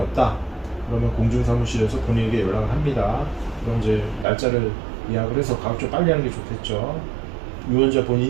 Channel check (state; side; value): drops out; left; at 4.2 s